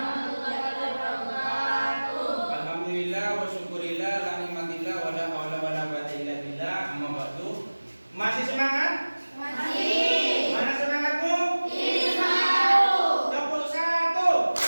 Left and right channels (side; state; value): both; inverted; correlation -1.00